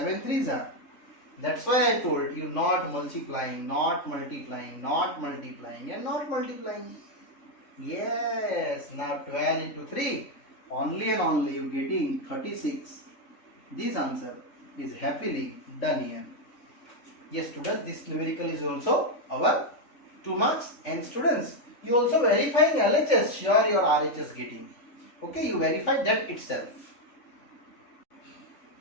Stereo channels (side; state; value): right; late; 3.5 ms